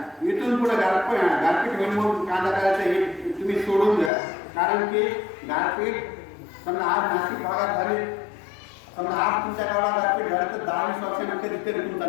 इथून पुढे गारपीट होईल म्हणून कांदा करायचं हे तुम्ही सोडून द्या. कारण की गारपीट समजा आज नाशिक भागात झाली, समजा आज तुमच्या गावाला गारपीट झालं तर 10-20 वर्षांनी कधीतरी तुमचा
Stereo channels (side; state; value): right; drops out; at 4.1 s